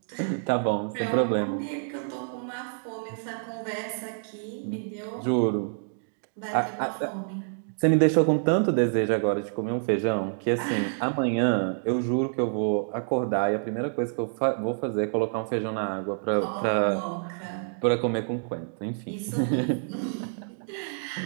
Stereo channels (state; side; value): silent; left; digital silence